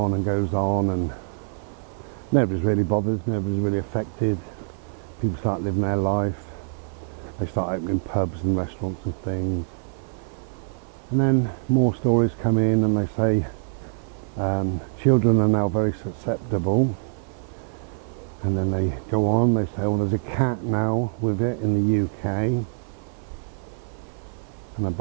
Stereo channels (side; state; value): left; silent; 58 dB below the other